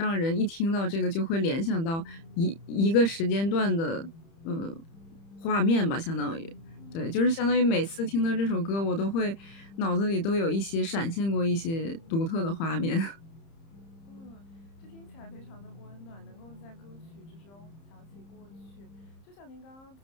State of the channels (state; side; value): late; right; 30 ms